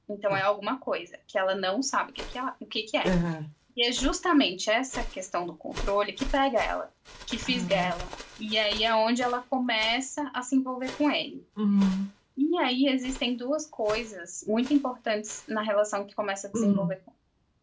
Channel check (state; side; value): identical; both; correlation 1.00